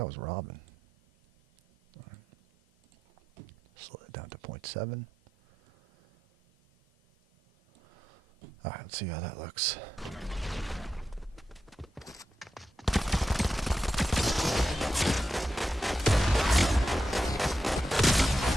was Robin. Right. Slow it down to 0.7. Alright, let's see how that looks.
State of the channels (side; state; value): both; normal; correlation 0.89